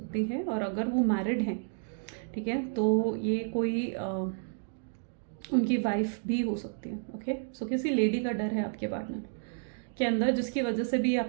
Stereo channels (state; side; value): silent; left; digital silence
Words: है, और अगर वो मैरिड हैं, ठीक है, तो ये कोई उनकी वाइफ भी हो सकती है। ओके, सो किसी लेडी का डर है आपके पार्टनर के अंदर, जिसकी वजह से भी